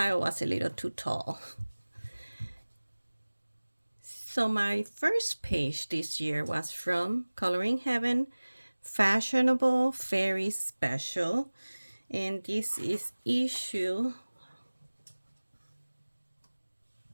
was a little too tall. So my first page this year was from Coloring Heaven, Fashionable Fairy Special. And this is issue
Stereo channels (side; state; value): both; inverted; correlation -1.00